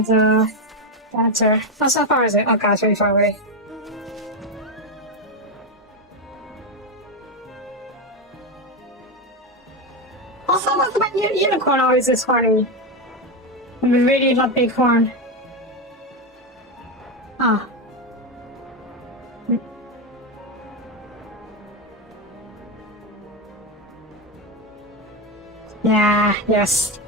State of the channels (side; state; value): both; normal; correlation 0.10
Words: a dancer. Oh, so far is it? Oh god, it's really far away. Also, what's about unicorn always this horny? I really love big horn. Ah. Yeah, yes,